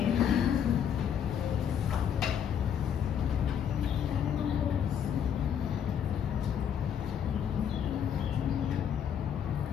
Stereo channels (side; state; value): right; quieter; 8.5 dB